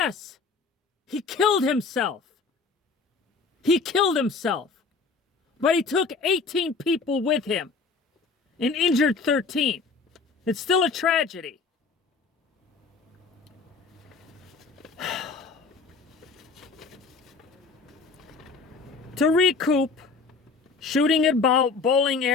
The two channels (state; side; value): quieter; right; 4.5 dB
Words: he killed himself. He killed himself, but he took 18 people with him and injured 13. It's still a tragedy. To recoup, shooting at bowling